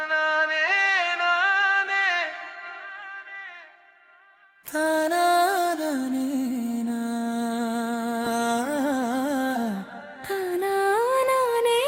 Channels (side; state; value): both; identical; correlation 1.00